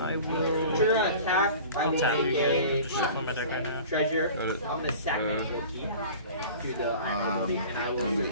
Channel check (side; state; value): both; inverted; correlation -0.41